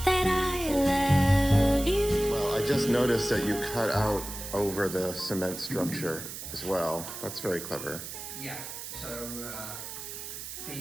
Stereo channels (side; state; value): right; noise; hiss, 9 dB below the sound